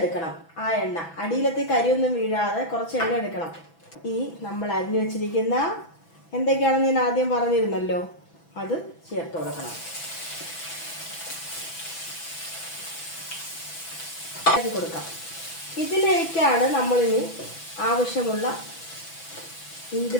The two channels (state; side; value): late; right; 6.0 ms